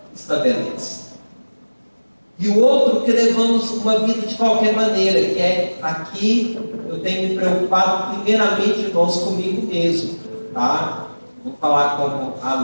estabelece. E o outro, que levamos uma vida de qualquer maneira, que é aqui, eu tenho me preocupado primeiramente, irmãos, comigo mesmo, tá? Vou falar como a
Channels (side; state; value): both; inverted; correlation -1.00